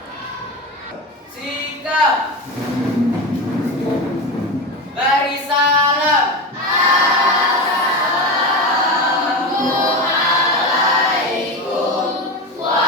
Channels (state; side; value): normal; both; correlation 0.21